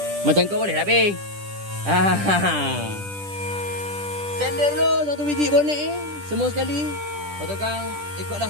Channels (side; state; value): left; late; 10 ms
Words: Macam kau boleh lah, Bing. Sender dulu satu biji bonet ni. Semua sekali. Lepas tu kan,